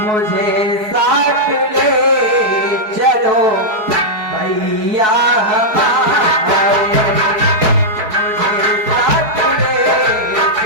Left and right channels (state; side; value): late; left; 4.7 ms